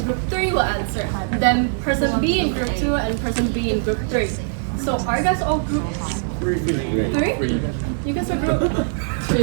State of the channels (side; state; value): left; silent; digital silence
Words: 3 will answer. Then person B in group 2 and person B in group 3. So are you guys all group 3? You guys are group 2.